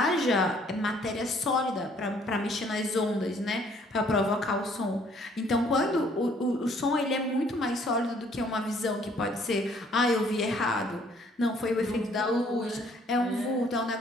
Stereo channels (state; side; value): normal; both; correlation 0.62